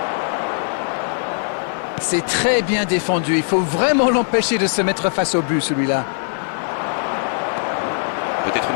C'est très bien défendu. Il faut vraiment l'empêcher de se mettre face au but, celui-là. Peut-être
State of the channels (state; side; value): silent; right; digital silence